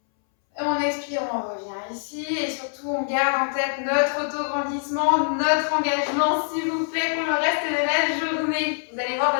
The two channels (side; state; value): right; silent; 62 dB below the other